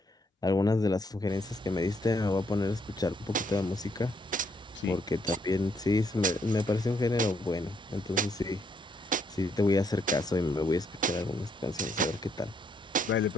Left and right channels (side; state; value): both; normal; correlation 0.72